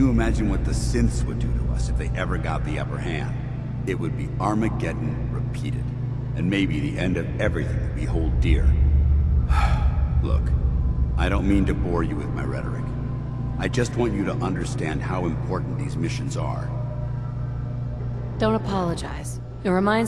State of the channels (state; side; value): identical; both; correlation 1.00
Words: imagine what the synths would do to us if they ever got the upper hand? It would be Armageddon repeated, and maybe the end of everything that we hold dear. Look, I don't mean to bore you with my rhetoric. I just want you to understand how important these missions are. Don't apologize. It